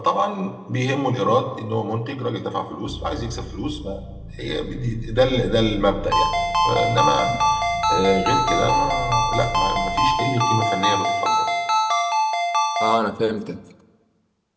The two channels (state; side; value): identical; both; correlation 1.00